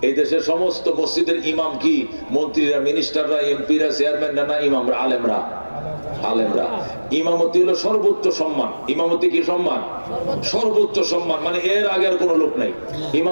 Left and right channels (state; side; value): inverted; both; correlation -1.00